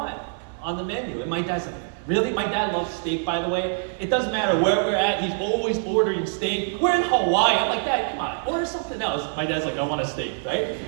on the menu. And my dad's like, really? My dad loves steak, by the way. It doesn't matter where we're at, he's always ordering steak. We're in Hawaii. I'm like, Dad, come on, order something else. My dad's like, I want a steak, right?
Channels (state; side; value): silent; left; 62 dB below the other